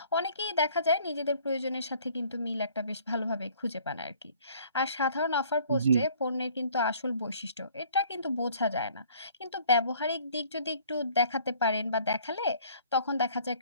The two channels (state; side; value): inverted; both; correlation -0.56